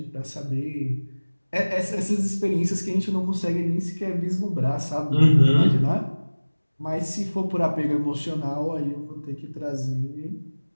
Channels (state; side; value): inverted; both; correlation -1.00